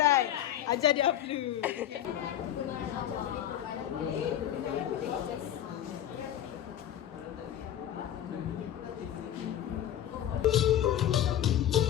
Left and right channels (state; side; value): quieter; right; 11.3 dB